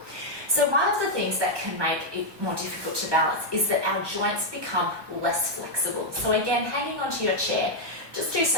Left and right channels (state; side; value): late; left; 1.2 ms